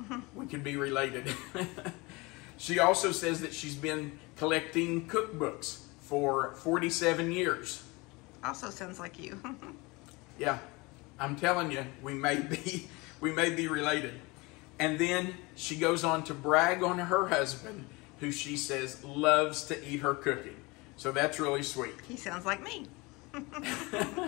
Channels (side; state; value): right; quieter; 24.8 dB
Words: we could be related. She also says that she's been collecting cookbooks for 47 years. Also sounds like you. Yeah, I'm telling you, we may be related. And then she goes on to brag on her husband, who she says loves to eat her cooking. So that's really sweet. He sounds like me.